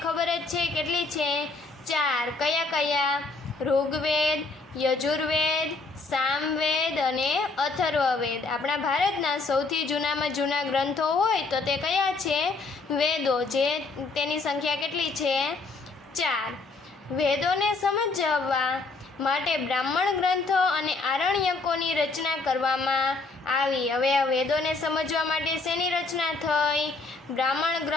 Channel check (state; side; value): quieter; right; 3.7 dB